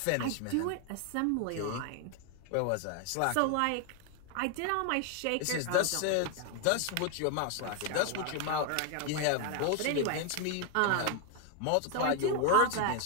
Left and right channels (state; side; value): different; both; correlation 0.01